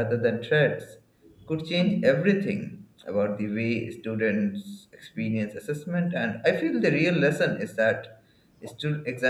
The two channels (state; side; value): identical; both; correlation 1.00